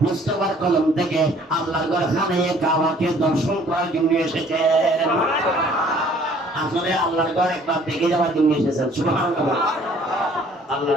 মুস্তাফার কলম থেকে আল্লাহর ঘর খানে কাবাকে দর্শন করার জন্য এসেছেন। আসলে আল্লাহর ঘর একবার দেখে যাওয়ার জন্য এসেছেন। সুবহানাল্লাহ।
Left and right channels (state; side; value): normal; both; correlation 0.57